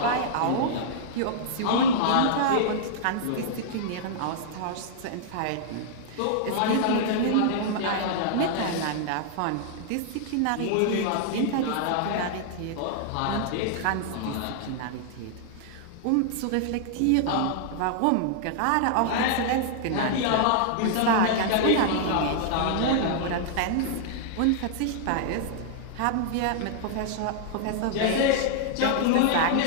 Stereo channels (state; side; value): different; both; correlation -0.01